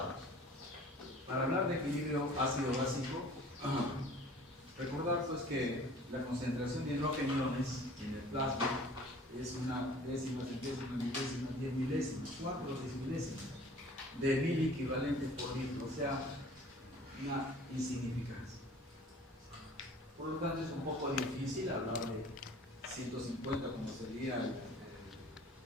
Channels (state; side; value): normal; both; correlation 0.48